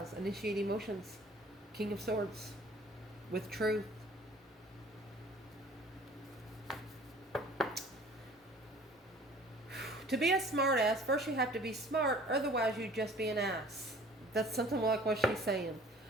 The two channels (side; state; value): both; normal; correlation 0.50